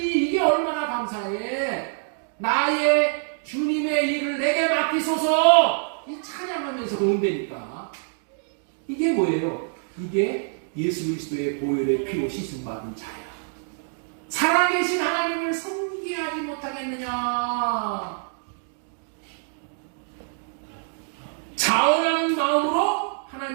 이게 얼마나 감사해. 나의 주님의 일을 내게 맡기소서. 이 찬양하면서 그런다니까. 이게 뭐예요? 이게 예수 그리스도의 보혈의 피로 씻음 받은 자야. 살아계신 하나님을 섬기게 하지 못하겠느냐? 자원하는 마음으로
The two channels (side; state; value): left; silent; 62 dB below the other